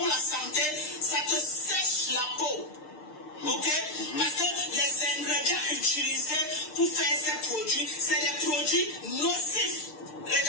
la santé, ça te sèche la peau. Ok? Parce que les ingrédients utilisés pour faire ces produits, c'est des produits nocifs.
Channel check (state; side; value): late; right; 6.6 ms